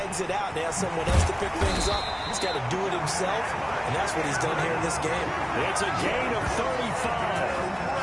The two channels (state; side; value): identical; both; correlation 1.00